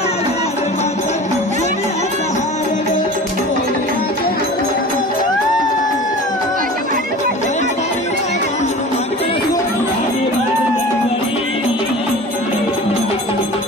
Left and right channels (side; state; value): both; normal; correlation 0.38